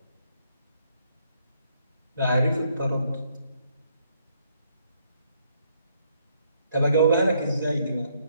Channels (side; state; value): both; inverted; correlation -0.70